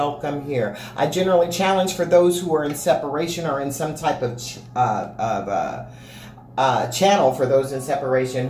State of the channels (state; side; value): identical; both; correlation 1.00